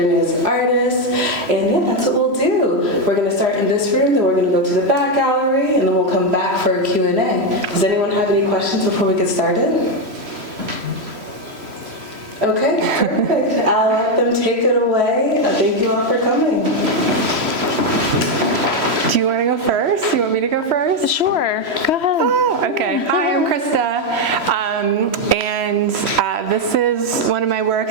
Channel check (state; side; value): late; left; 3.1 ms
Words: as artists, and yeah, that's what we'll do. We're going to start in this room, then we're going to go to the back gallery, and then we'll come back for a Q&A. Does anyone have any questions before we get started? Okay, perfect. I'll let them take it away. Thank you all for coming. Do you want to go first? You want me to go first? Sure, go ahead. Oh, okay. Hi, I'm Krista, and this is one of my